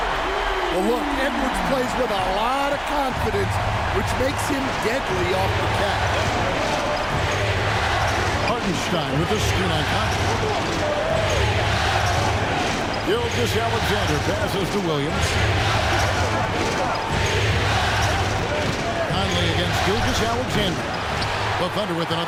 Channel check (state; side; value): identical; both; correlation 1.00